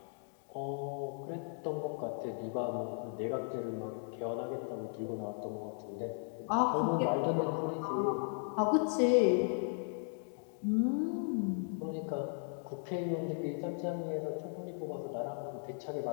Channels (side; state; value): right; silent; 54 dB below the other